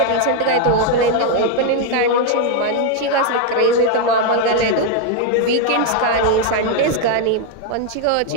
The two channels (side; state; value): both; different; correlation 0.01